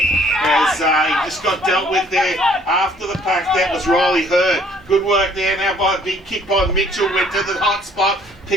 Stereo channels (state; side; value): normal; both; correlation 0.60